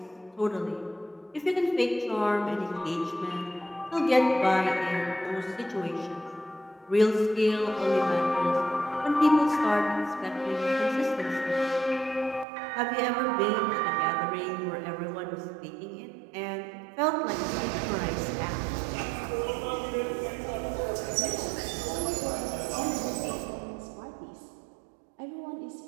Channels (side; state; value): left; drops out; at 12.5 s